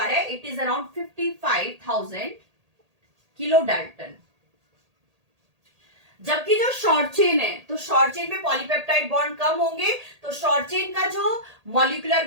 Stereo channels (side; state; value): left; late; 1.8 ms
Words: है, it is around 55,000 kilo dalton. जबकि जो शॉर्ट चेन है, तो शॉर्ट चेन में पॉलीपेप्टाइड बॉन्ड कम होंगे, तो शॉर्ट चेन का जो मॉलिक्यूलर